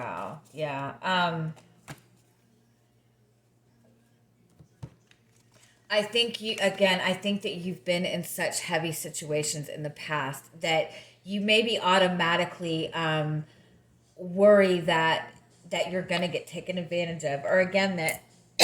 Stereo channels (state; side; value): identical; both; correlation 1.00